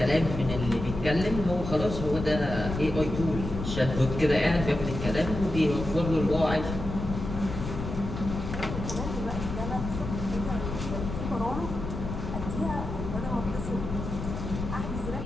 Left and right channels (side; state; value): left; noise; rumble, 6 dB below the sound